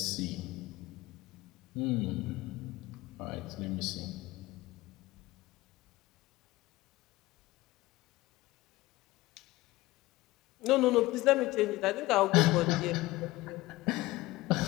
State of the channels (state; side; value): quieter; right; 19.1 dB